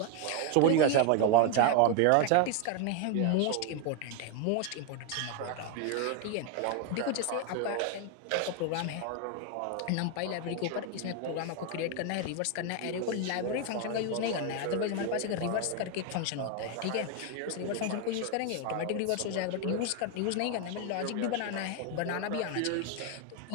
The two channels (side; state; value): both; different; correlation 0.01